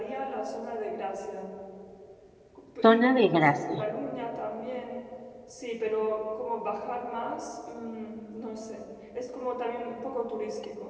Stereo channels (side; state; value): both; identical; correlation 1.00